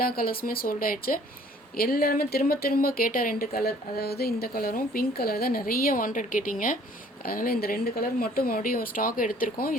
கலர்ஸுமே சோல்ட் ஆயிடுச்சு. எல்லாருமே திரும்ப கேட்ட 2 கலர், அதாவது இந்த கலரும் பிங்க் கலர் தான் நிறைய வாண்டட் கேட்டிங்க. அதனால் இந்த 2 கலர் மட்டும் மறுபடியும் ஸ்டாக் எடுத்திருக்கோம்.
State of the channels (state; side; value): normal; both; correlation 0.56